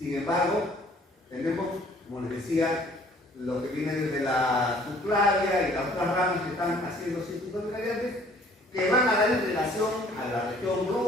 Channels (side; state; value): both; normal; correlation 0.56